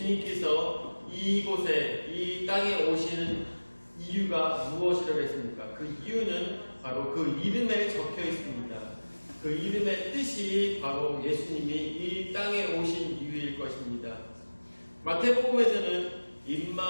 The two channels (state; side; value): inverted; both; correlation -1.00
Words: 이곳에 이 땅에 오시는 이유가 무엇이라고 했습니까? 그 이유는 바로 그 이름에 적혀 있습니다. 그 이름의 뜻이 바로 예수님이 이 땅에 오신 이유일 것입니다. 마태복음에서는